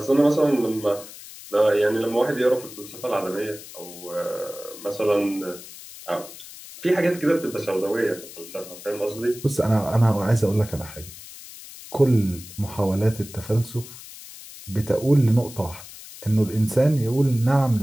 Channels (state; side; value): noise; left; hiss, 16 dB below the sound